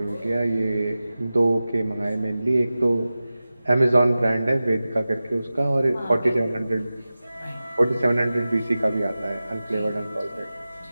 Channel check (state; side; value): inverted; both; correlation -0.96